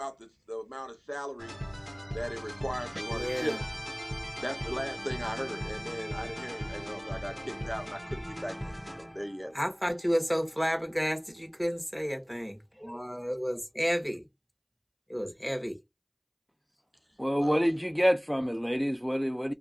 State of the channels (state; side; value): identical; both; correlation 1.00